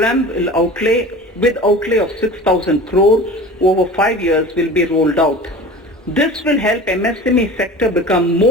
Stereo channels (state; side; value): normal; both; correlation 0.38